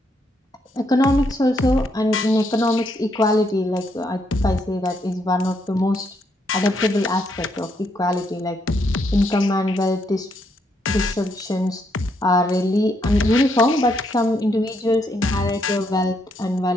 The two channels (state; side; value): normal; both; correlation 0.75